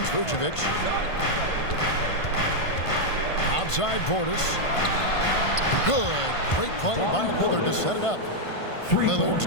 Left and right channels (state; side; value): late; right; 1.5 ms